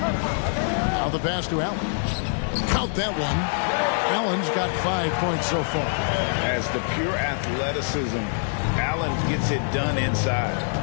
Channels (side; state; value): right; silent; 62 dB below the other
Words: Now the pass to Allen. Count that one. Allen's got 5 points so far. As the pure athleticism, Allen gets it done inside.